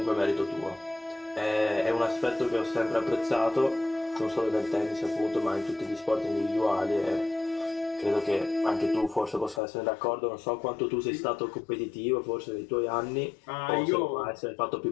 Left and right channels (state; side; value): drops out; right; at 9.6 s